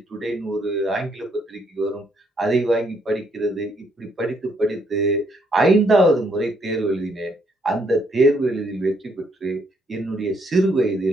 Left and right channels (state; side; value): normal; both; correlation 0.71